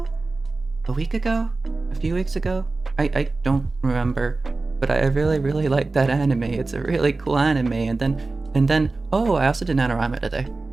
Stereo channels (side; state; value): left; quieter; 3.5 dB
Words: a week ago, a few weeks ago. I don't remember, but I really like that anime. It's a really cool anime. And then oh, I also did NaNoWriMo today.